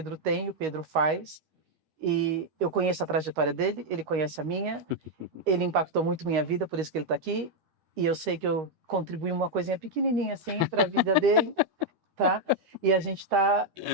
tem, o Pedro faz. E eu conheço a trajetória dele, ele conhece a minha, ele impactou muito minha vida, por isso que ele está aqui, e eu sei que eu contribuí uma coisinha pequenininha assim para a vida dele, tá? E a gente está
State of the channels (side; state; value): left; late; 13 ms